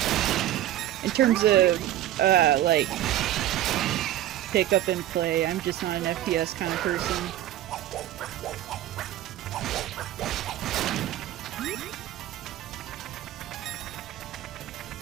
in terms of like pick up and play, I'm just not an FPS kind of person.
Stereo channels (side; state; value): left; quieter; 13.3 dB